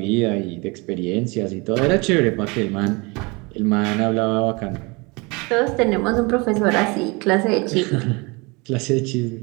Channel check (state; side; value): quieter; left; 27.3 dB